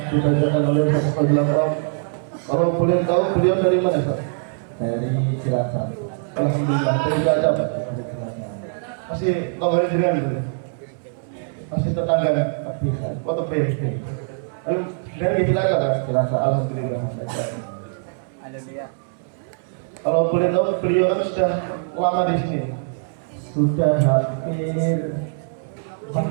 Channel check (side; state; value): left; silent; digital silence